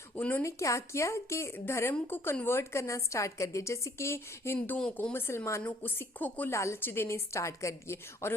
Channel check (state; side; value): normal; both; correlation 0.62